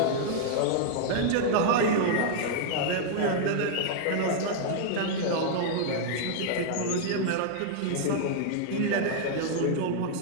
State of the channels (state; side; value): different; both; correlation -0.01